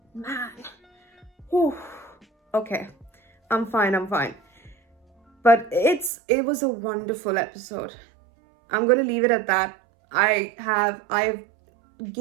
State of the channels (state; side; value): drops out; left; at 6.1 s